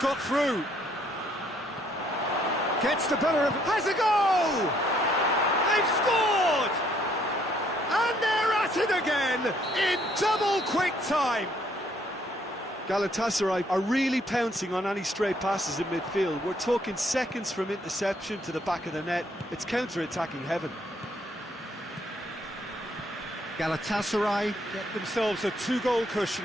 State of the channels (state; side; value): normal; both; correlation 0.67